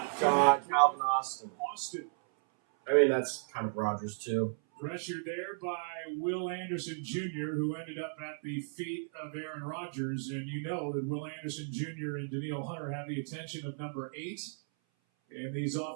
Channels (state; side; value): silent; left; 55 dB below the other